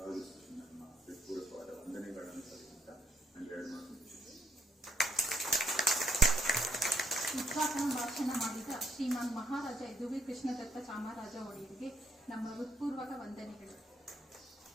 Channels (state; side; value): normal; both; correlation 0.71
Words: ನಮ್ಮ ಹೃತ್ಪೂರ್ವಕವಾದ ವಂದನೆಗಳನ್ನು ಸಲ್ಲಿಸುತ್ತಾ ನಾನು ಎರಡು ಮಾತು ಉದ್ಘಾಟನಾ ಭಾಷಣ ಮಾಡಿದ ಶ್ರೀಮಾನ್ ಮಹಾರಾಜ ಯದುವೀರ್ ಕೃಷ್ಣದತ್ತ ಚಾಮರಾಜ ಒಡೆಯರಿಗೆ ನಮ್ಮ ಹೃತ್ಪೂರ್ವಕ ವಂದನೆಗಳು.